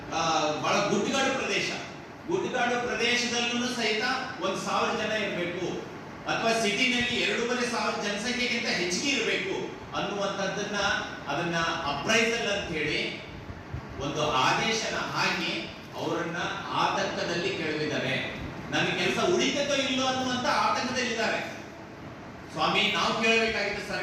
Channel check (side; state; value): both; identical; correlation 1.00